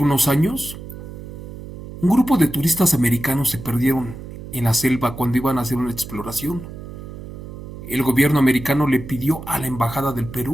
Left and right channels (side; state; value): right; noise; hum, 12 dB below the sound